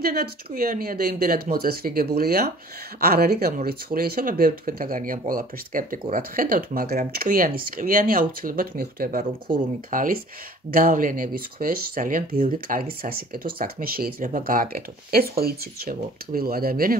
ჭკვიანია და იმდენად მოწესრიგებულია, არ არის გამორიცხული. ისე ბევრი თქვენთაგანი ამ ყველაფერს სკეპტიკურად ხედავთ, მაგრამ ჭკვიანი აუცილებლად მიხვდება, რომ ქურუმი ქალის გავლენების ქვეშ ძალიან ბევრი კარგი სასიკეთო საქმე შეიძლება გააკეთოთ. ეს ხო იცით ჩემო ტყვილო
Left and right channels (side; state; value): both; normal; correlation 0.50